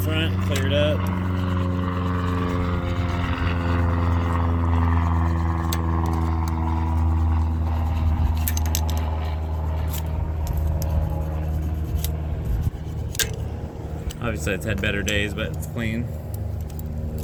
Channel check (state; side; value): identical; both; correlation 1.00